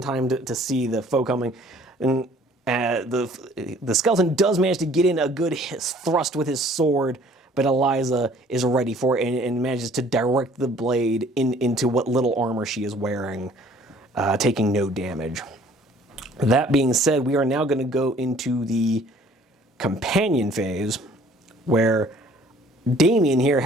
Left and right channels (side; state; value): both; normal; correlation 0.55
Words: time to see the foe coming. And the skeleton does manage to get in a good thrust with his sword, but Eliza is ready for it and manages to direct the blade into what little armor she is wearing, taking no damage. That being said, we are now going to go into the companion phase, where Damien here,